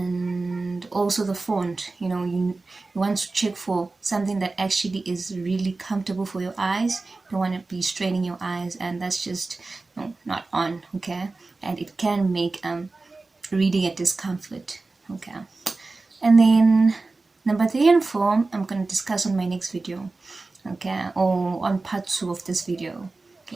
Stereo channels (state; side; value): quieter; left; 3.5 dB